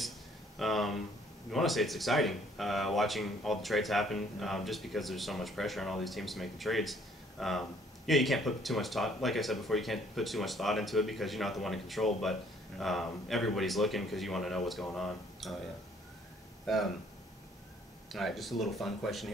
want to say it's exciting watching all the trades happen, just because there's so much pressure on all these teams to make the trades. Yeah, you can't put too much thought. Like I said before, you can't put too much thought into it because you're not the one in control. But everybody's looking because you want to know what's going on. Oh yeah. All right, just a little fun question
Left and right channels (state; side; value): normal; both; correlation 0.61